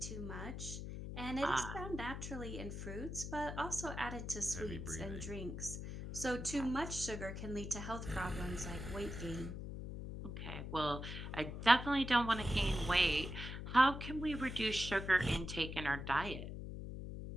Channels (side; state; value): left; noise; hum, 7 dB below the sound